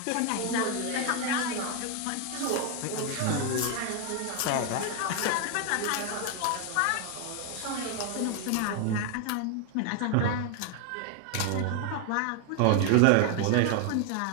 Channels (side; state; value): both; different; correlation 0.01